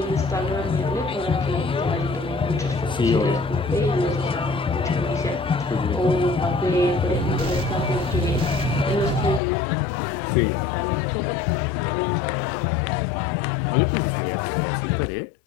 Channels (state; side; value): drops out; right; at 9.4 s